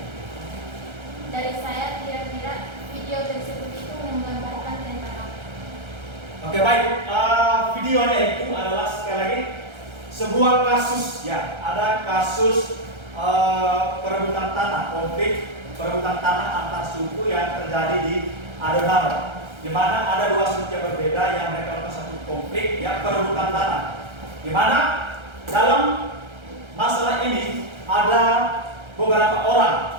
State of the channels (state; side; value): late; left; 1.3 ms